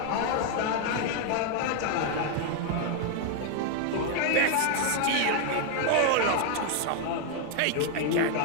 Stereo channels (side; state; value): both; different; correlation 0.00